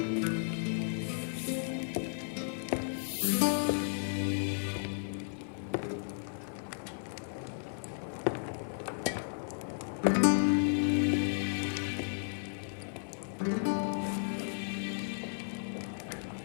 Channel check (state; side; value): silent; right; digital silence